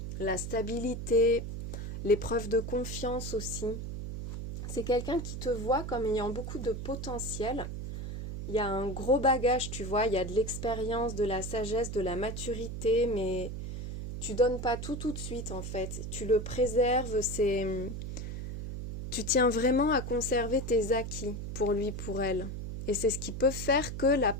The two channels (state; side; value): noise; right; hum, 6 dB below the sound